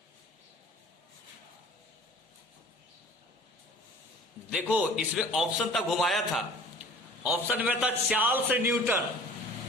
देखो इसमें ऑप्शन तक घुमाया था, ऑप्शन में था चार्ल्स न्यूटन,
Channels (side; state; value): both; normal; correlation 0.46